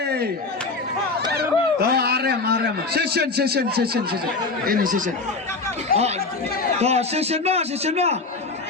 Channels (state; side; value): quieter; right; 3.8 dB